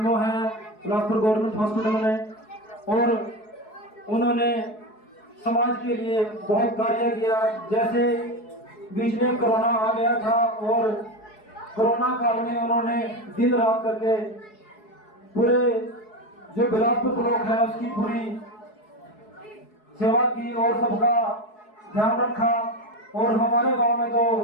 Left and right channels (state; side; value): late; right; 4.7 ms